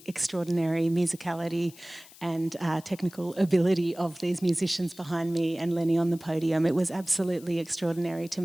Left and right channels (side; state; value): left; noise; hiss, 21 dB below the sound